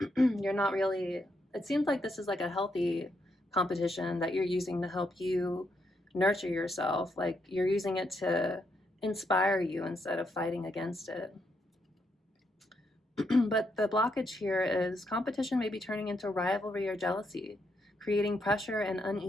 you're not really, it seems like this is like a healthy competition that you're using to help you nurture yourself. Like you're using it to inspire you instead of fighting against it. But the blockage here is competition may be turning into rivalry or jealousy, creating pressure and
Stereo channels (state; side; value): normal; both; correlation 0.79